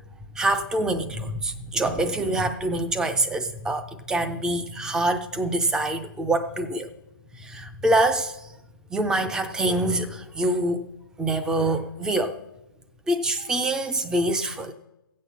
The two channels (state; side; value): normal; both; correlation 0.44